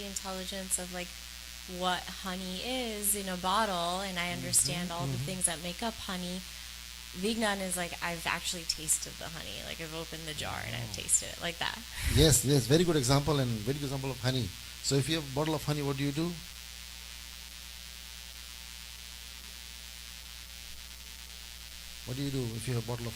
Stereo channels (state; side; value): identical; both; correlation 1.00